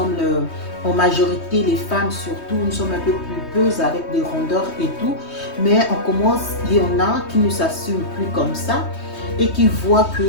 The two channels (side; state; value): right; late; 3.2 ms